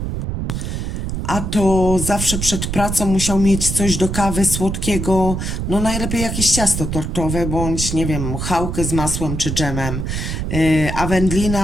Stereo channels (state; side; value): noise; right; rumble, 3 dB below the sound